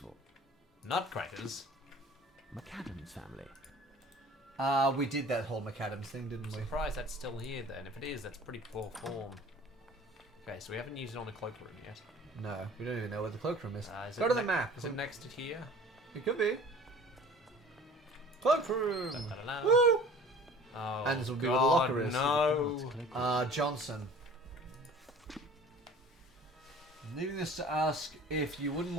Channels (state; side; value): normal; both; correlation 0.45